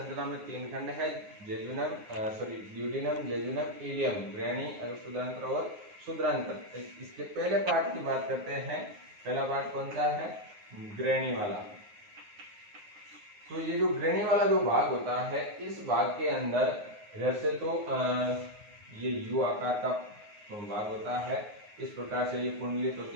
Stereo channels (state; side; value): late; left; 9.6 ms